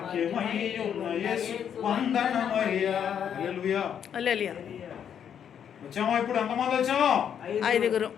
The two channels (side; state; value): right; quieter; 8.5 dB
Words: ఉన్న యేసు వందనమయ్యా. హల్లెలూయా. హల్లెలూయా. వచ్చామా? ఇప్పుడు ఎంతమంది వచ్చాము? 5.